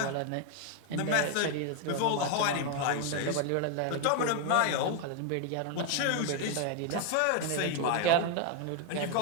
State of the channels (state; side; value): different; both; correlation 0.01